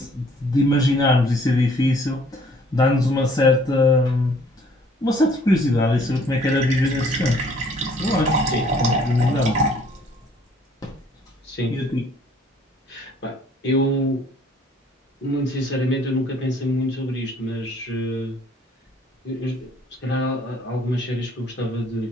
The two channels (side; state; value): both; normal; correlation 0.59